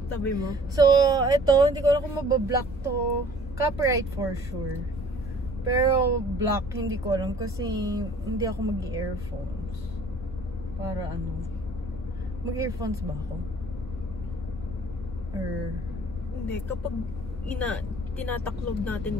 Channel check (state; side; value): normal; both; correlation 0.53